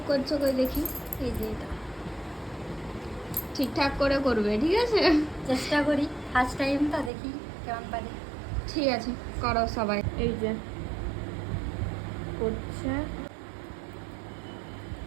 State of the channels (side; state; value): left; drops out; at 7.1 s